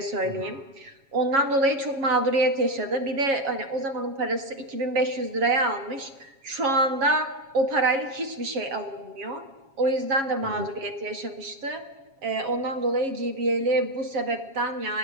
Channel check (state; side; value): late; left; 7.3 ms